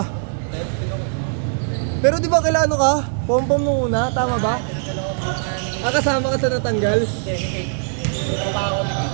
Pero di ba kailan ka? Pom-pom nung una, tama ba? Kasama ka sa natanggal? Hindi, ni Kate. Trabaho ko ni Kate.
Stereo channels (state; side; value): silent; left; digital silence